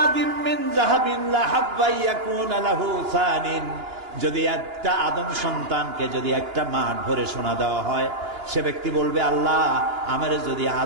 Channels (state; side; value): late; left; 2.9 ms